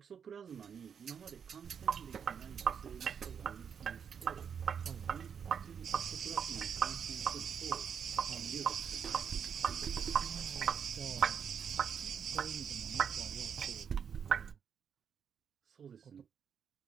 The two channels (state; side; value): quieter; left; 7.4 dB